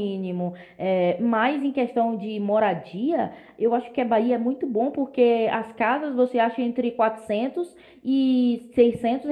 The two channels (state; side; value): identical; both; correlation 1.00